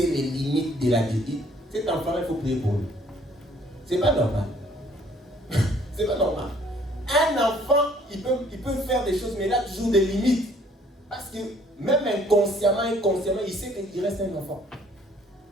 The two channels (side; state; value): both; normal; correlation 0.60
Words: les limites de la vie. Cet enfant, il faut prier pour lui. C'est pas normal. C'est pas normal. Un enfant, il peut faire des choses, mais il a toujours des limites. Parce que même inconsciemment, il sait qu'il reste un enfant.